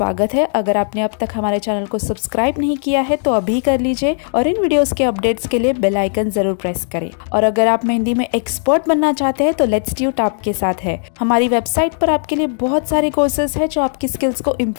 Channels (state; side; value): silent; right; digital silence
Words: है। अगर आपने अब तक हमारे चैनल को सब्सक्राइब नहीं किया है तो अभी कर लीजिए और इन वीडियोस के अपडेट्स के लिए बेल आइकन जरूर प्रेस करें। और अगर आप मेहंदी में एक्सपर्ट बनना चाहते हैं तो लेट्सट्यूट आपके साथ है। हमारी वेबसाइट पर आपके लिए बहुत सारे कोर्सेज है जो आपकी स्किल्स को